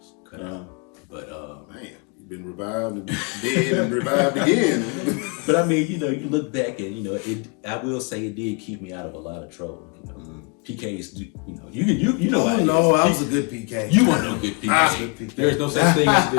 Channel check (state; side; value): quieter; right; 33.6 dB